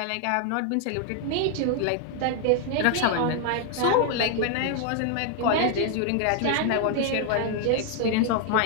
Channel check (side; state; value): both; different; correlation 0.00